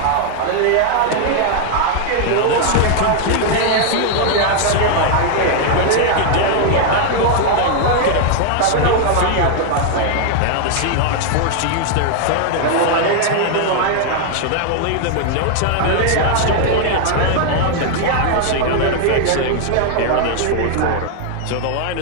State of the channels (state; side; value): different; both; correlation 0.00